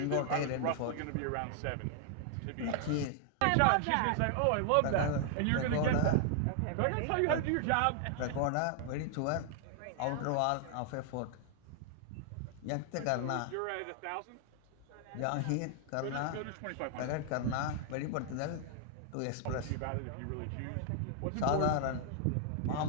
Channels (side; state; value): both; different; correlation 0.00